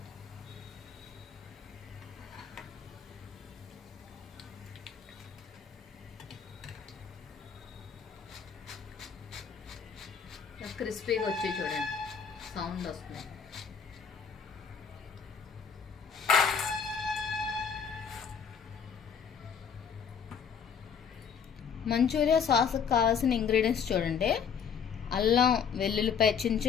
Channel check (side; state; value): right; quieter; 6.9 dB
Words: క్రిస్పీగా వచ్చి చూడండి, సౌండ్ వస్తుంది. మంచూరియా సాస్కి కావాల్సిన ఇంగ్రీడియంట్స్ చూడండి. అల్లం వెల్లుల్లిపాయ చిన్న